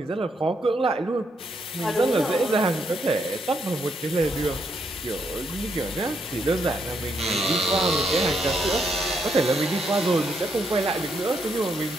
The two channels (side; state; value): both; normal; correlation 0.77